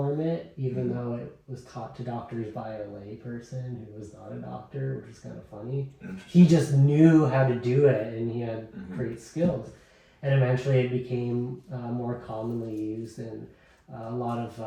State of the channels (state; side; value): identical; both; correlation 1.00